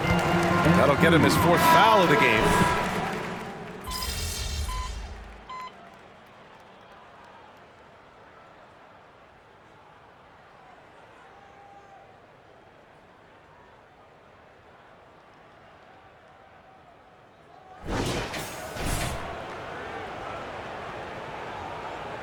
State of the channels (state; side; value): identical; both; correlation 1.00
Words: That'll get him his 4th foul of the game.